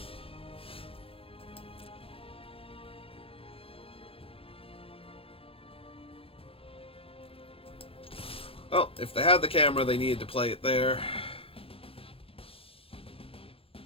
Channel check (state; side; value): late; right; 0.27 ms